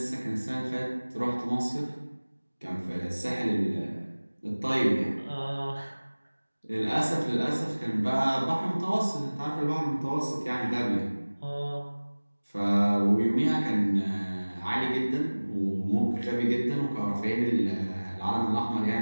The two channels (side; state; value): both; inverted; correlation -1.00